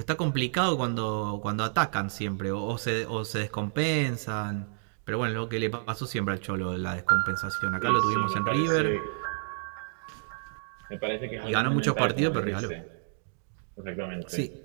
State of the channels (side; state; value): left; silent; digital silence